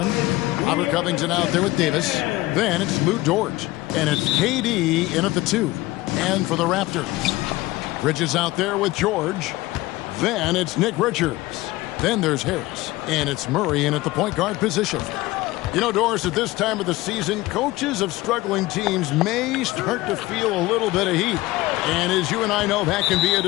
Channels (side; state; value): right; quieter; 19.0 dB